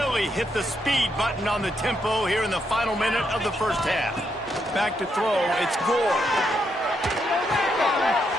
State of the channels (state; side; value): normal; both; correlation 0.79